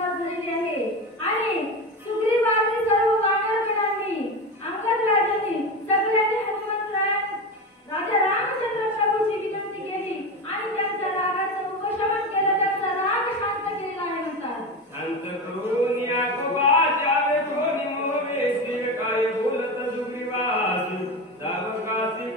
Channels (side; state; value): both; normal; correlation 0.21